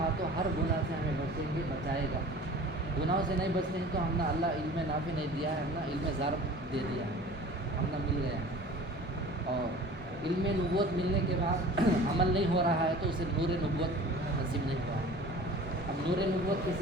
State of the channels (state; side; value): normal; both; correlation 0.42